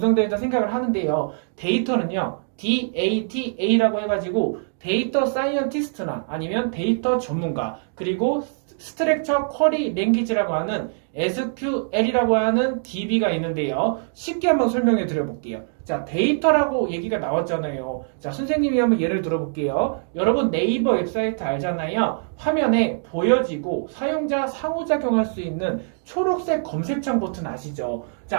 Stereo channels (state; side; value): silent; left; digital silence